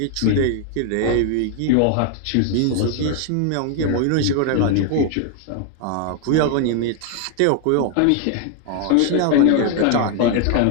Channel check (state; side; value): different; both; correlation 0.00